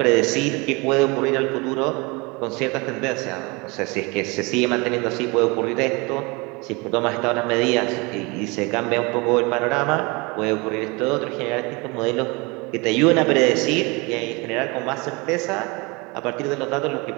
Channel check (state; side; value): quieter; left; 27.1 dB